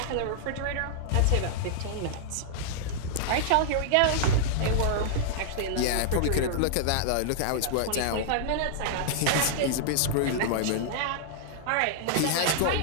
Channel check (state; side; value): different; both; correlation -0.01